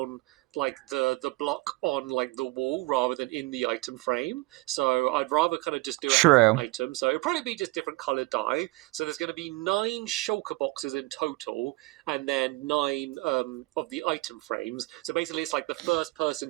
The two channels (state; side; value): quieter; left; 21.9 dB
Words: like the block on like the wall rather than in the item frame. So I'd rather kind of just do it as an item. So it'll probably be just different colored dye. So there's going to be 9 shulker boxes in total, and then 9 of the item frames. So basically it's like the first